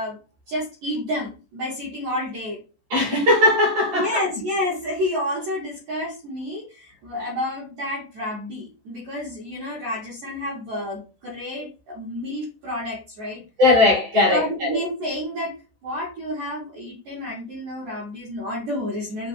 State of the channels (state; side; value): late; left; 14 ms